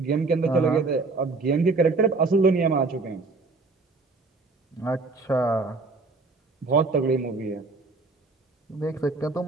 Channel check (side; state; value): left; quieter; 3.8 dB